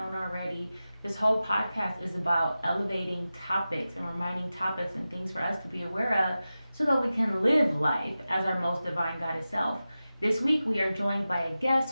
already. This whole podcast is about elevating topics and reminding topics and things for us to be aware of so that we can live life as our most divine goddess self. This week we are joined by a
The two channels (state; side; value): inverted; both; correlation -0.94